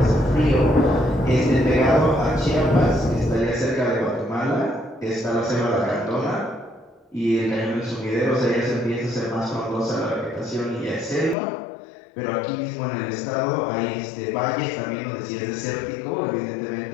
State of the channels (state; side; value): drops out; right; at 11.4 s